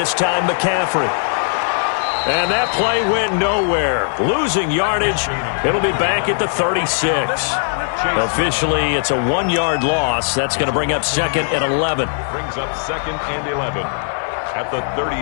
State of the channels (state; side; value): silent; right; digital silence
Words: time McCaffrey. And that play went nowhere. Losing yardage. It'll be back at the 36. Officially, it's a 1-yard loss. That's going to bring up second and 11. Brings up second and 11 at the